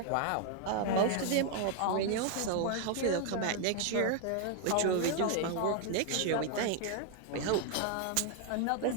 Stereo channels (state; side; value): different; both; correlation 0.00